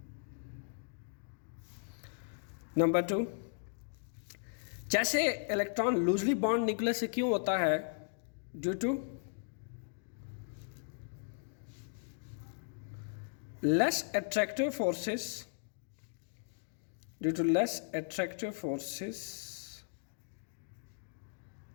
Number 2, जैसे इलेक्ट्रॉन लूजली बॉन्ड न्यूक्लियस से क्यों होता है, due to less attractive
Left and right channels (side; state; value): right; silent; digital silence